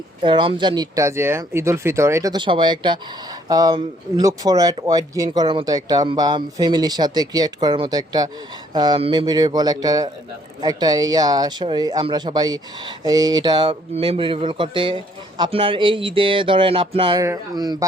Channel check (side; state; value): both; normal; correlation 0.64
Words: রমজান ঈদটা যে ঈদ উল ফিতর, এটা তো সবাই একটা লুক ফরওয়ার্ড ওয়েট গেইন করার মতো একটা, বা ফ্যামিলির সাথে ক্রিয়েট করার মতো একটা মেমোরেবল একটা একটা আমরা সবাই এটা মেমোরেবল করতে আপনার এই ঈদে ধরেন আপনার